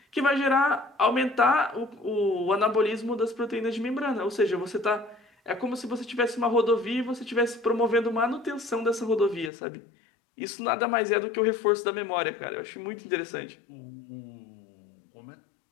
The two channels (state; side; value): drops out; right; at 9.5 s